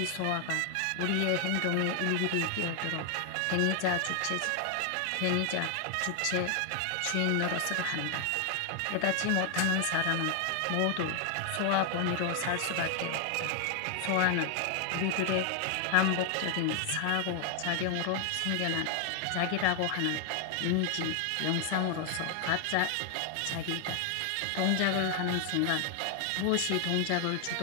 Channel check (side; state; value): both; different; correlation 0.00